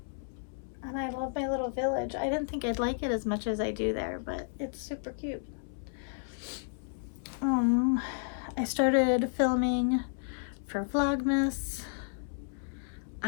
And I love my little village. I didn't think I'd like it as much as I do there, but it's super cute. I started filming for Vlogmas.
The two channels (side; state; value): right; silent; 56 dB below the other